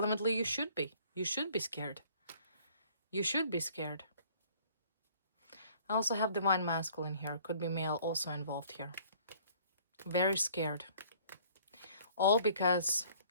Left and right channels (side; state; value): both; inverted; correlation -0.56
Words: you should be. You should be scared. You should be scared. I also have divine masculine here. Could be male also involved here. Very scared. All because